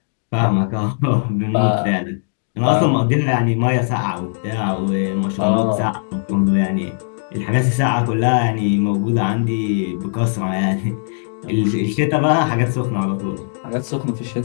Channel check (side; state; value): right; silent; digital silence